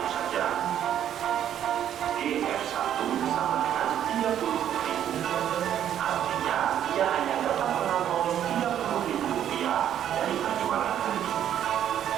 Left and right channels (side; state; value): left; quieter; 10.3 dB